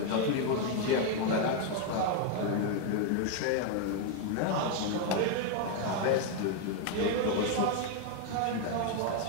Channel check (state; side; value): different; both; correlation 0.01